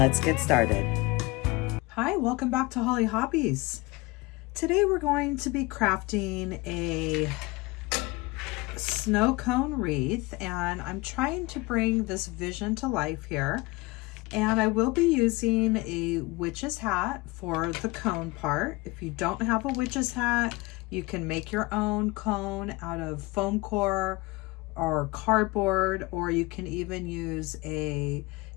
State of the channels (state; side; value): quieter; right; 22.9 dB